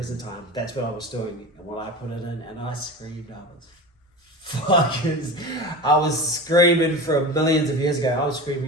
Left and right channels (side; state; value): both; normal; correlation 0.29